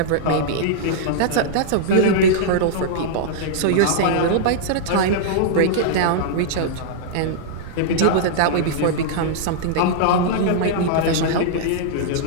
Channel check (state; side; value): different; both; correlation -0.01